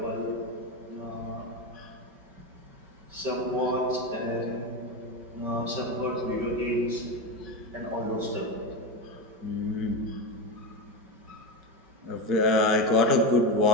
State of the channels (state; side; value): late; left; 5.3 ms